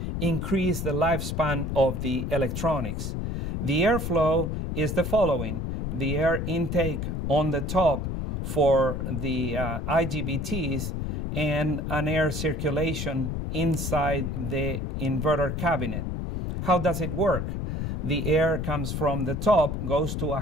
increase the lifespan of the electronics. The airflow is the following: the air intake on the top for the IGBTs and an air circulation inside the inverter cabinet. How does it work? The air comes from the top, goes to a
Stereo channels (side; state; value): left; noise; rumble, 2 dB below the sound